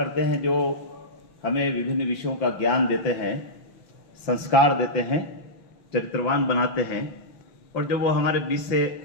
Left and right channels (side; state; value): right; late; 5.8 ms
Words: हैं जो हमें विभिन्न विषयों का ज्ञान देते हैं, संस्कार देते हैं, चरित्रवान बनाते हैं, और जब वो हमारे बीच से